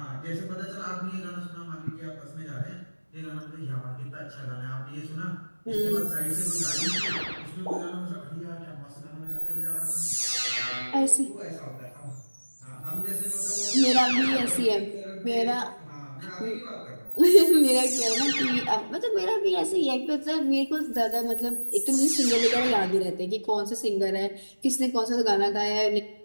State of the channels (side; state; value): both; inverted; correlation -1.00